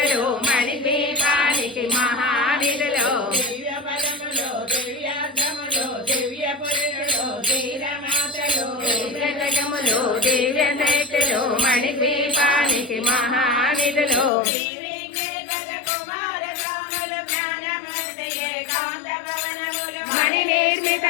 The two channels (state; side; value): drops out; right; at 14.3 s